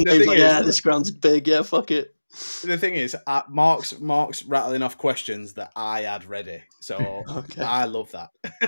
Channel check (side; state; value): both; inverted; correlation -1.00